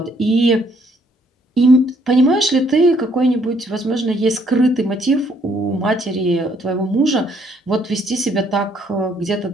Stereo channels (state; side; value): normal; both; correlation 0.67